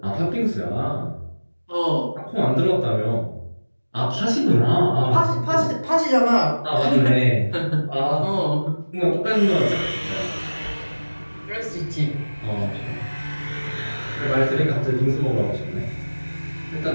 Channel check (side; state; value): both; inverted; correlation -1.00